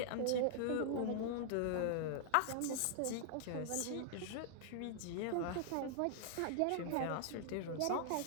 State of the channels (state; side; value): different; both; correlation -0.01